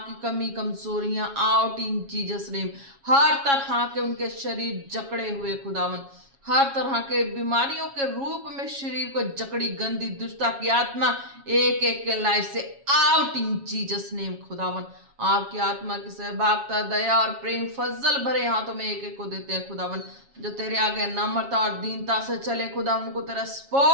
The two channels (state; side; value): late; left; 7.3 ms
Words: कमी कमजोरियां आउट इन जीसस नेम। हर तरह के उनके शरीर जकड़े हुए खुदावन, हर तरह के बीमारियों के रूप में शरीर को जकड़ी गंदी दुष्टा की आत्मा एक एक के लाइफ से आउट इन जीसस नेम खुदावन। आपकी आत्मा की सहभागिता, दया और प्रेम फजल भरे हाथों में एक एक को देते हैं खुदावन। जो तेरे आगे नम्रता और दीनता से चले खुदावन को तेरा